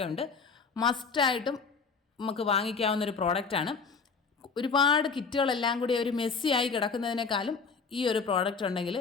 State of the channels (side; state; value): right; quieter; 5.2 dB